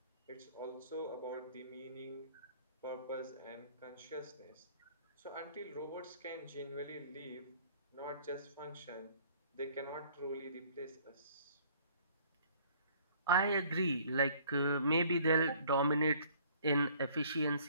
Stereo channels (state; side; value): inverted; both; correlation -0.56